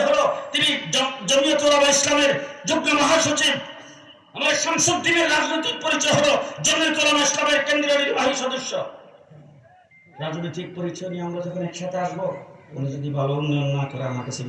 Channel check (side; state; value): both; identical; correlation 1.00